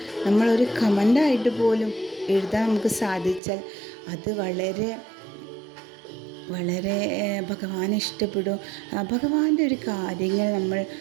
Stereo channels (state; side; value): drops out; left; at 3.4 s